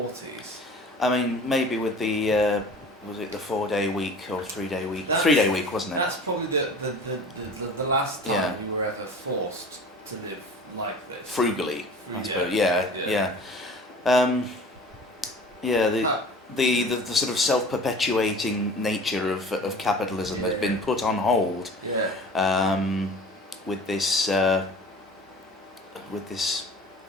I mean, maybe with the was it the 4-day week or 3-day week? 3-day week, wasn't it? That's probably the last time we were ever forced to live like this. Frugally, I suppose. The sort of self-perpetuating nature of capitalism has been put on hold. With this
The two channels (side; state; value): both; normal; correlation 0.42